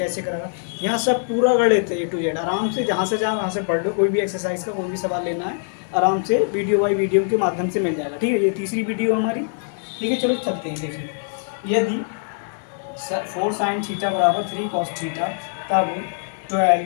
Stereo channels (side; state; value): right; silent; 64 dB below the other